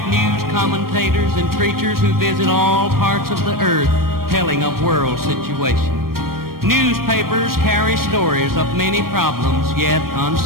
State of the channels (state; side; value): late; left; 0.93 ms